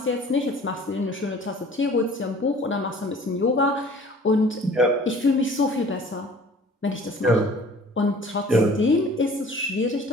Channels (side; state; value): both; normal; correlation 0.49